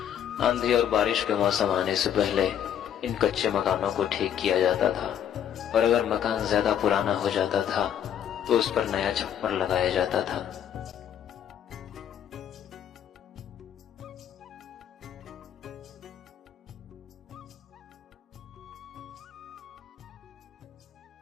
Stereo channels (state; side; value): quieter; right; 9.5 dB